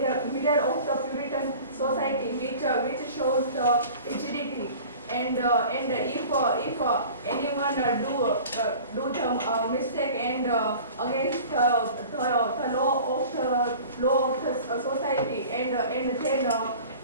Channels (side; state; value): both; inverted; correlation -0.42